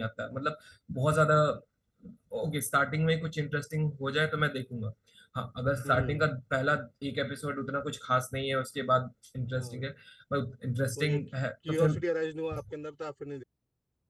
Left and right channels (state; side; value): identical; both; correlation 1.00